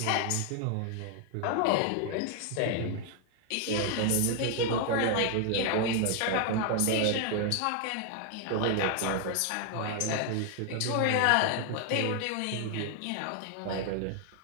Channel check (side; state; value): both; different; correlation 0.00